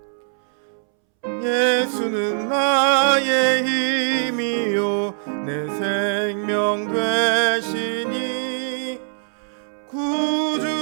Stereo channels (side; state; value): left; silent; 64 dB below the other